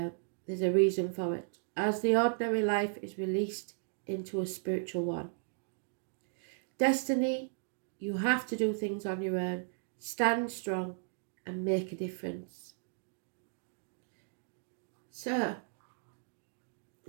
a reason for it. As the ordinary life is released into a spiritual one. Destiny, you have to do things on your own. Stand strong and make a difference. So,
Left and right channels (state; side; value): silent; left; digital silence